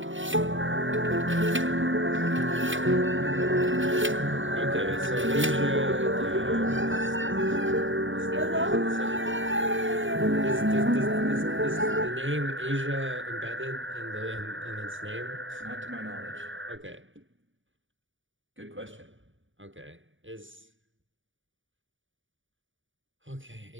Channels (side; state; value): left; late; 0.56 ms